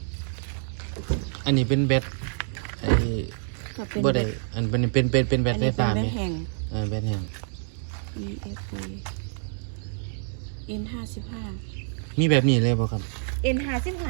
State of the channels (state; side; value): silent; left; 60 dB below the other